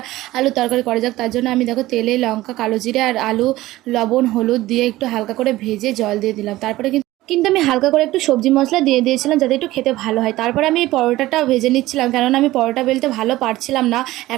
আলু তরকারি করা যাক। তার জন্য আমি দেখো তেলে লঙ্কা, কালো জিরে আর আলু, লবণ, হলুদ দিয়ে একটু হালকা করে ভেজে জল দিয়ে দিলাম। তারপরে কিন্তু আমি হালকা করে একটু সবজি মশলা দিয়ে দিয়েছিলাম যাতে একটু খেতে ভালো হয়। তারপরে আমি এই পরোটাটা ভেজে নিচ্ছিলাম, কেননা আমি পরোটা বেলতে ভালো পারছিলাম না।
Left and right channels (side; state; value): left; quieter; 17.0 dB